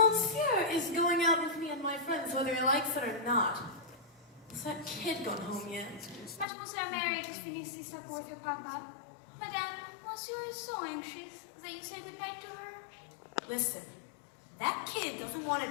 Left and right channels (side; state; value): right; drops out; at 6.5 s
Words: is going out with me and my friends, whether he likes it or not. Has that kid gone home yet? Mademoiselle Mary just finished this supper with her papa. Madame, Monsieur is so anxious that you say goodnight to her. Listen, that kid doesn't want to